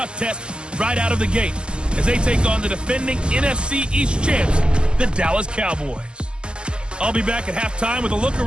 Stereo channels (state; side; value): late; left; 0.053 ms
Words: test right out of the gate as they take on the defending NFC East champs, the Dallas Cowboys. I'll be back at halftime with a look